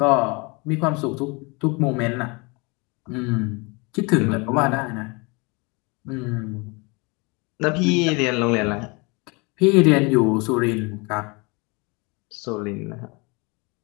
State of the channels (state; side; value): quieter; right; 28.7 dB